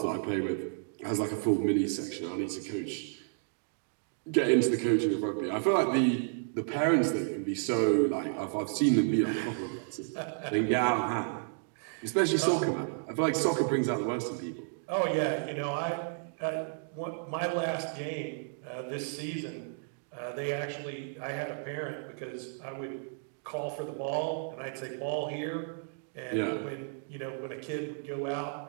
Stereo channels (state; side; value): silent; left; digital silence